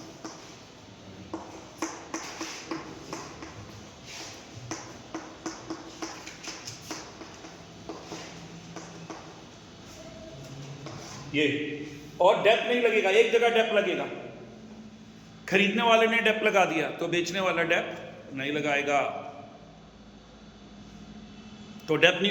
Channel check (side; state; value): both; identical; correlation 1.00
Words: ये, और डेप नहीं लगेगा, एक जगह डेप लगेगा। खरीदने वाले ने डेप लगा दिया तो बेचने वाला डेप नहीं लगाएगा, तो डेप